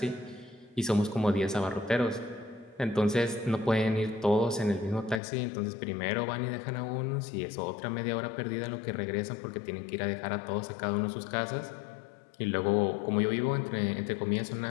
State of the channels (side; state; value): right; drops out; at 5.2 s